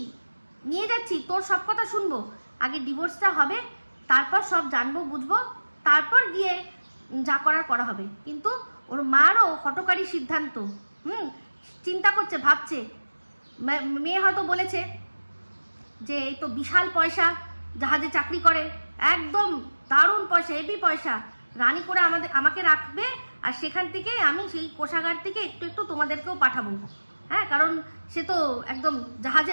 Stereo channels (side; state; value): both; inverted; correlation -1.00